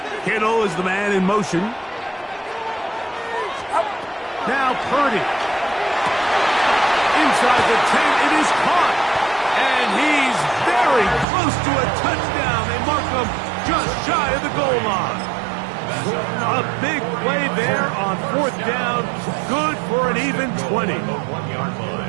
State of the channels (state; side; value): drops out; left; at 11.2 s